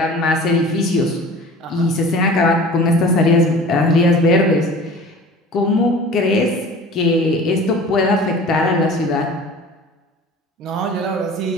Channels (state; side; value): normal; both; correlation 0.42